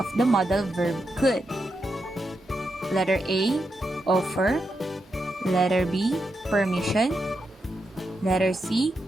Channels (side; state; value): both; normal; correlation 0.85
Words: the modal verb could? Letter A, offer. Letter B, permission. Letter C,